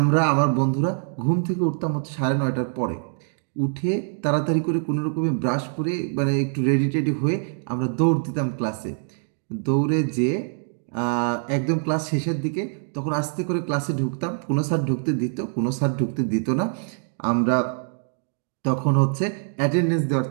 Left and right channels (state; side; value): silent; left; 62 dB below the other